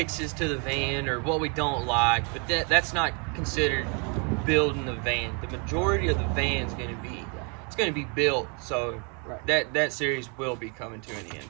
to the van or what we don't like, but that's not considered building the van. The majority of the van's gonna be built, so that series will be coming to an end,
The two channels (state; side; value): quieter; left; 35.3 dB